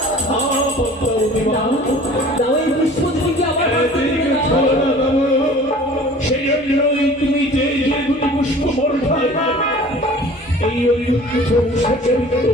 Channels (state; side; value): normal; both; correlation 0.46